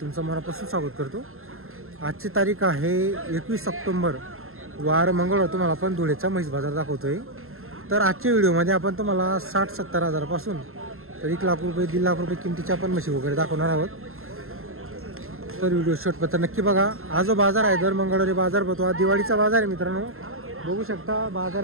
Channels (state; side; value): late; left; 0.61 ms